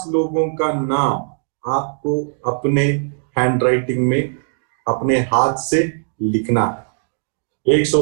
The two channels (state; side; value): silent; left; digital silence